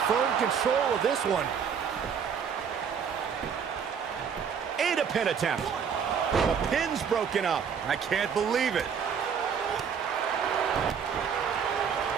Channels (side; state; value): left; quieter; 7.1 dB